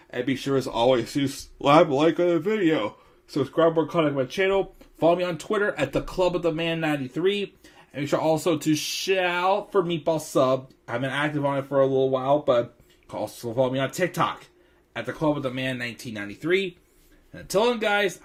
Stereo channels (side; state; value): both; identical; correlation 1.00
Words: And be sure, as always, to slap a like on the video. Subscribe or contact my channel. Follow me on Twitter at the Club of the Man 93. And make sure also to shout for Meatball Sub. I've been active on it for a little while, but also follow me on TikTok at the Club of the Man 1993. And until then, guys,